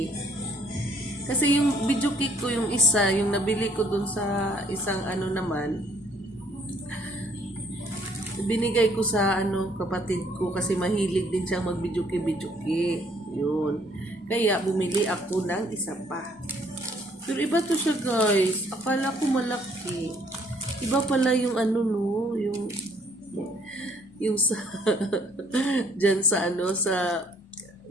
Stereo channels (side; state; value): both; normal; correlation 0.63